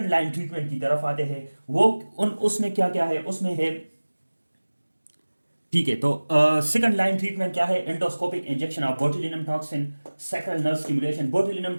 लाइन ट्रीटमेंट की तरफ आते हैं। वो उसमें क्या क्या है? उसमें है, ठीक है। तो सेकंड लाइन ट्रीटमेंट क्या है? Endoscopic injection of botulinum toxin, sacral nerve stimulation. Botulinum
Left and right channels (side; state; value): both; inverted; correlation -1.00